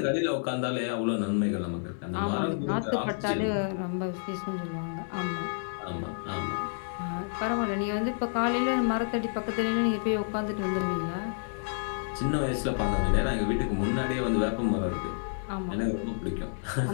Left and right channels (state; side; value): silent; right; digital silence